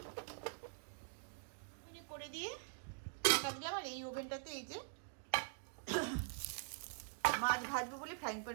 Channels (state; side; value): silent; left; digital silence